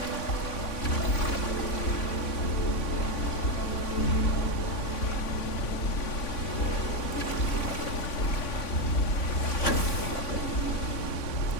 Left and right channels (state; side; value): late; right; 3.5 ms